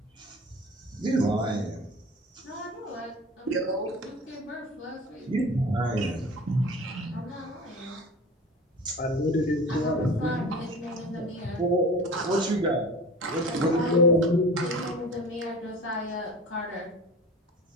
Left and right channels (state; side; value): normal; both; correlation 0.38